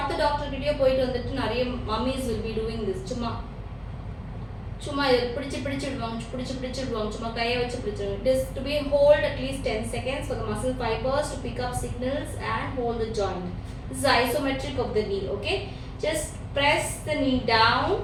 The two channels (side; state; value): both; identical; correlation 1.00